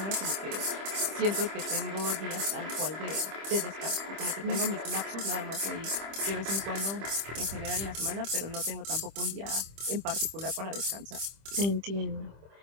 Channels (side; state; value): left; late; 25 ms